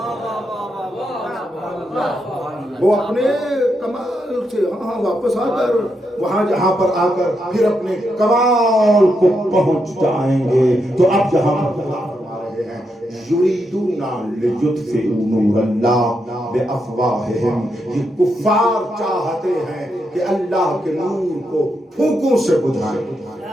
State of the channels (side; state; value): both; normal; correlation 0.82